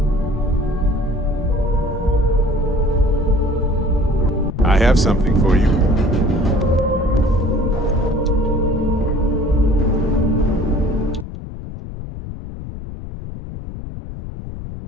I have something for you.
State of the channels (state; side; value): noise; left; rumble, 10 dB below the sound